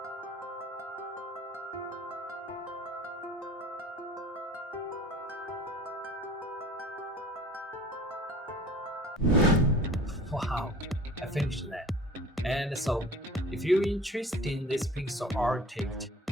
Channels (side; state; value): both; normal; correlation 0.43